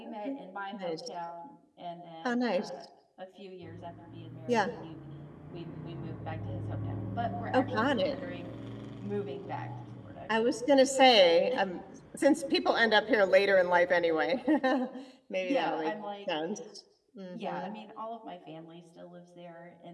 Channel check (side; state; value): both; identical; correlation 1.00